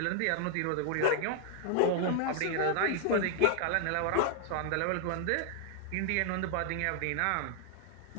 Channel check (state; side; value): different; both; correlation 0.00